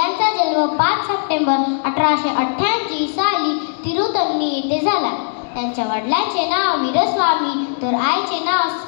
जन्म 5 सप्टेंबर 1888 साली तिरुतनी येथे झाला. त्यांच्या वडिलांचे नाव वीरस्वामी तर आईचे नाव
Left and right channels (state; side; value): silent; right; digital silence